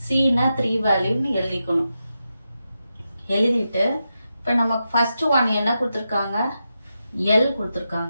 சின்னா 3 வேல்யூன்னு எழுதிக்கணும். எழுதிட்டு இப்போ நமக்கு ஃபர்ஸ்ட் ஒன் என்ன கொடுத்துருக்காங்க, எல்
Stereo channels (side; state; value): both; inverted; correlation -0.88